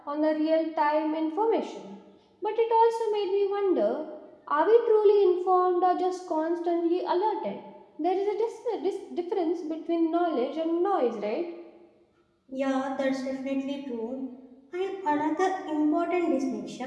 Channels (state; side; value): identical; both; correlation 1.00